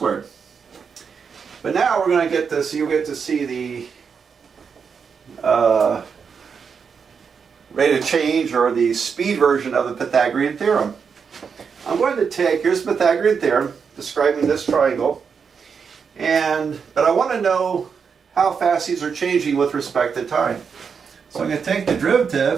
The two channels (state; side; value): quieter; left; 6.2 dB